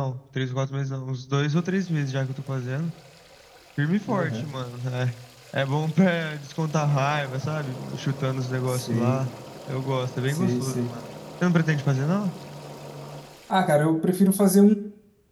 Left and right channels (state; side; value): identical; both; correlation 1.00